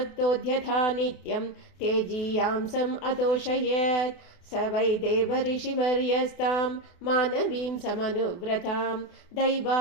नित्यं तेजीयांसम् अतोषयत् स वै देवऋषिवर्यस्तां मानवीं समनुव्रतां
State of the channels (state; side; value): late; right; 28 ms